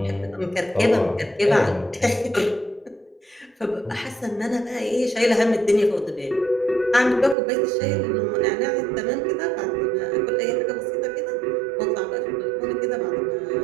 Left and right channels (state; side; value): drops out; left; at 7.4 s